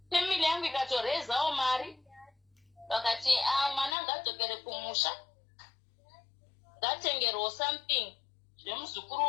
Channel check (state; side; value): drops out; right; at 4.0 s